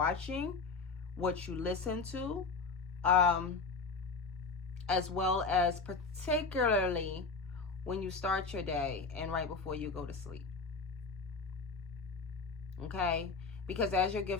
what you listen to, as well as particularly when you start your day and right before you go to sleep. Okay? Because as your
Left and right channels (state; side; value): quieter; right; 4.4 dB